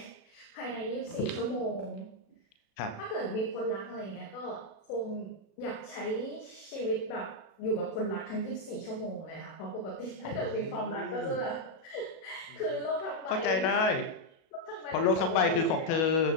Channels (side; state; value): right; late; 36 ms